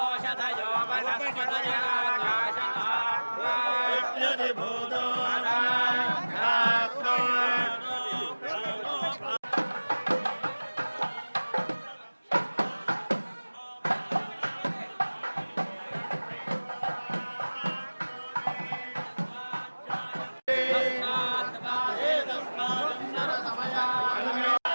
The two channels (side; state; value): both; inverted; correlation -1.00